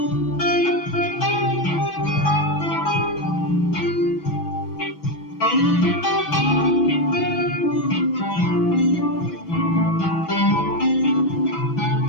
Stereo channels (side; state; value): right; late; 6.1 ms